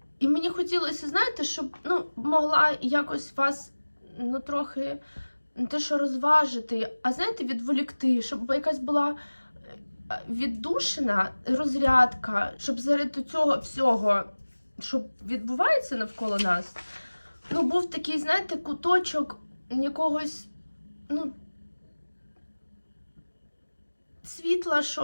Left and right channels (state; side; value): inverted; both; correlation -1.00